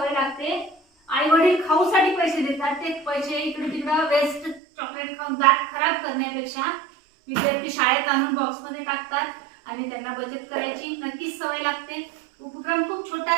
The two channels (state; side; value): drops out; left; at 4.6 s